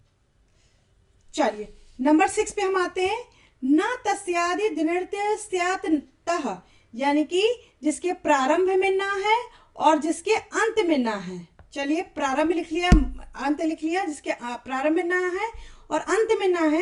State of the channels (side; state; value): both; identical; correlation 1.00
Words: चलिए नंबर 6 पे हम आते हैं। न तस्यादि दिनृत्य स्यात् तः, यानी कि जिसके प्रारंभ में ना है और जिसके अंत में ना है। चलिए प्रारंभ लिख लिया, अंत लिख लिया, जिसके प्रारंभ में ना है और अंत में ना